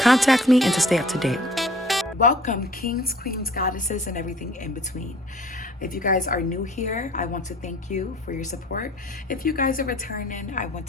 me and to stay up to date. Welcome, kings, queens, goddesses, and everything in between. If you guys are new here, I want to thank you for your support. If you guys are returning, I want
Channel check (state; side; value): normal; both; correlation 0.51